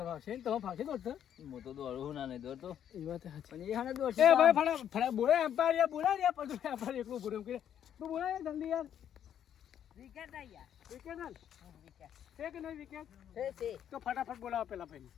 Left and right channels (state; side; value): quieter; right; 9.7 dB